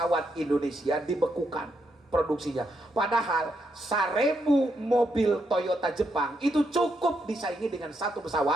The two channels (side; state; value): both; normal; correlation 0.79